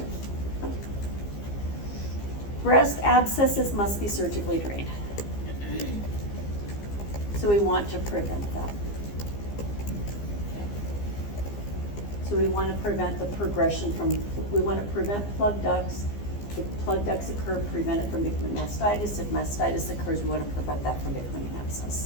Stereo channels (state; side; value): late; right; 15 ms